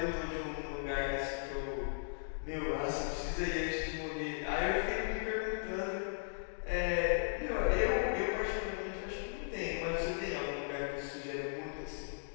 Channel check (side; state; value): right; silent; digital silence